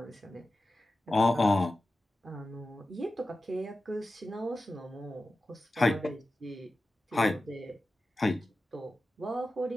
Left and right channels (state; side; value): normal; both; correlation 0.93